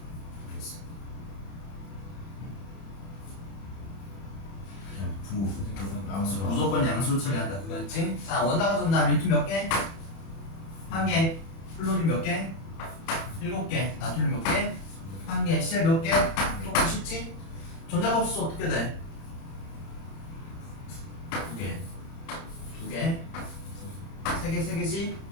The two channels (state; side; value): late; right; 30 ms